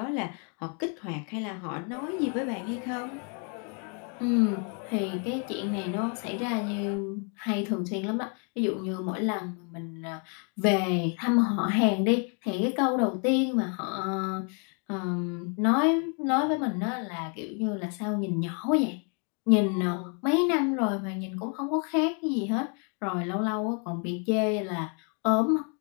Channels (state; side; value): quieter; right; 39.0 dB